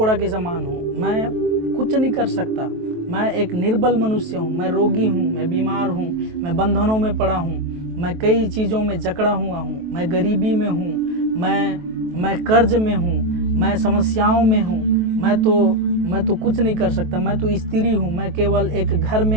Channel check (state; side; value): late; left; 23 ms